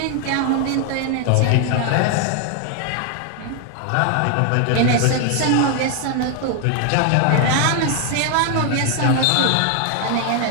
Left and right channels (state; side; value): different; both; correlation 0.00